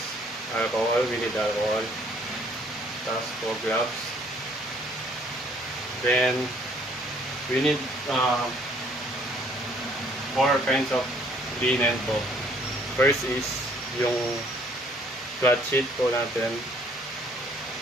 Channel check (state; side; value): normal; both; correlation 0.61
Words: alcohol, we need alcohol. Tapos po gloves. Then we need 4 kinds of linen po. First is yung flat sheet po natin,